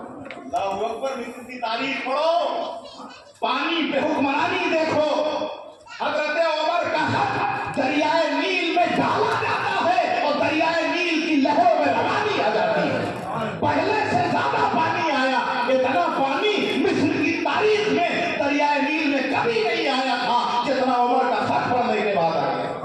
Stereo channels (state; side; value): identical; both; correlation 1.00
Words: اللہ اکبر. مصر کی تاریخ پڑھو، پانی پہ حکمرانی دیکھو. حضرت عمر کا خط دریائے نیل میں ڈالا جاتا ہے اور دریائے نیل کی لہروں میں روانی آ جاتی ہے. پہلے سے زیادہ پانی آیا. اتنا پانی مصر کی تاریخ میں دریائے نیل میں کبھی نہیں آیا تھا جتنا عمر کا خط پڑھنے کے بعد آیا.